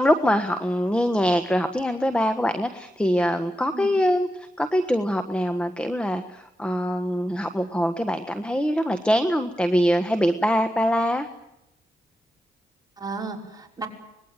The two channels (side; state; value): both; normal; correlation 0.90